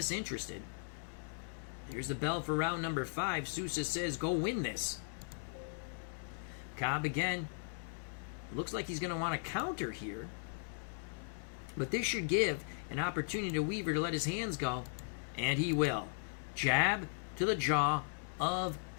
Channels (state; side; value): silent; right; digital silence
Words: Here's the bell for round number 5. Sousa says, go win this. Cobb again. Looks like he's going to want to counter here. But this should give an opportunity to Weaver to let his hands go. And he will. Jab to the jaw of